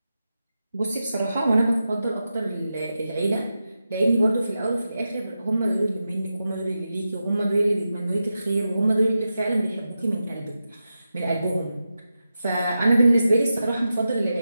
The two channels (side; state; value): both; inverted; correlation -0.90